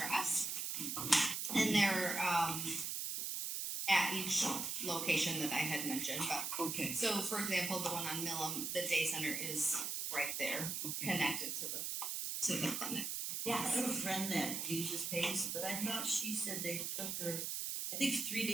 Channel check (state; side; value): noise; right; hiss, 2 dB below the sound